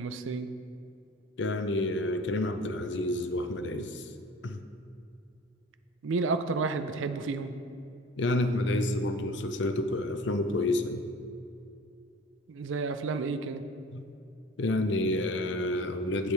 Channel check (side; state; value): both; normal; correlation 0.42